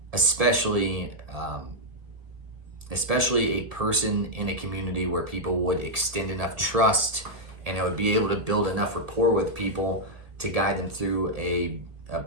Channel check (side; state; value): left; late; 1.7 ms